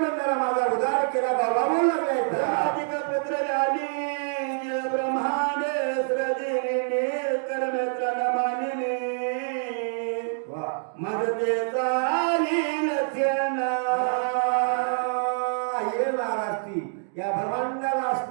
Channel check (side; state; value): left; silent; digital silence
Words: माझा उद्धार केला बाबा बोल लागलाय. पुत्र आली ब्रह्मांड सृजिनी कर्मेत्र नमानिनी मदते चाली लक्षणा. ये महाराष्ट्री ब्रह्मांडाला